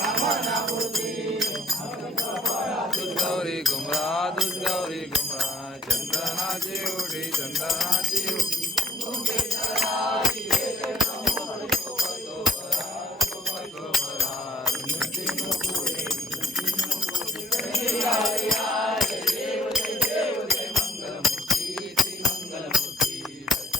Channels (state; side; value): normal; both; correlation 0.60